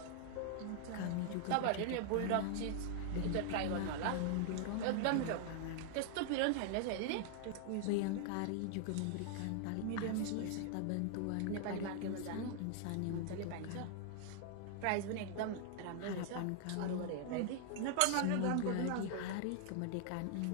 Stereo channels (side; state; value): both; different; correlation 0.00